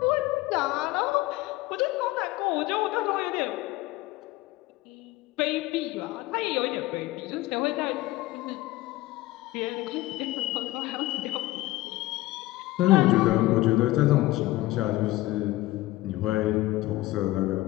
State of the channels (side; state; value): right; quieter; 18.0 dB